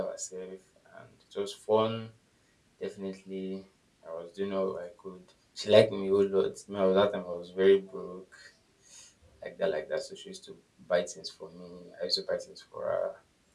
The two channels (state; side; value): identical; both; correlation 1.00